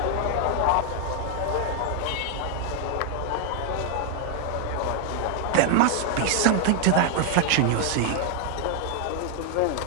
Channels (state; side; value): different; both; correlation 0.00